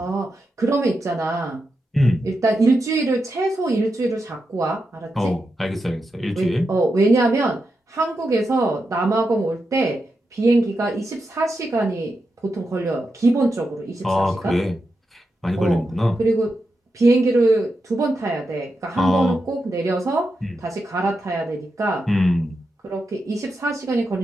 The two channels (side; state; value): both; normal; correlation 0.87